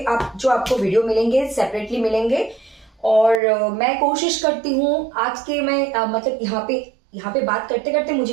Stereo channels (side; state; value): left; drops out; at 3.4 s